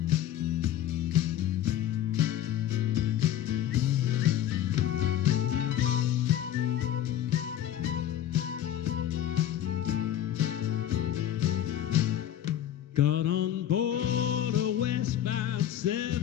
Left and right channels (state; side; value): quieter; right; 11.4 dB